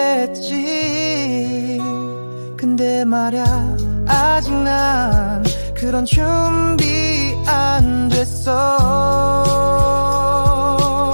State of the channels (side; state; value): both; inverted; correlation -1.00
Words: 근데 말야 아직 난 그런 준비 안 됐어.